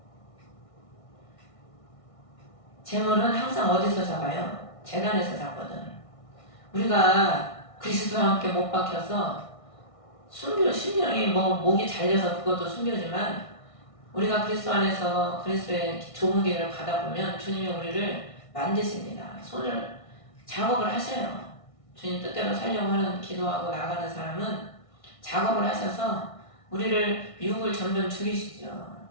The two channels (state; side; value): late; right; 1.6 ms